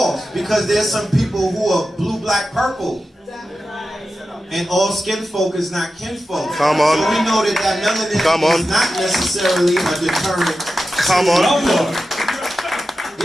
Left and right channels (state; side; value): normal; both; correlation 0.92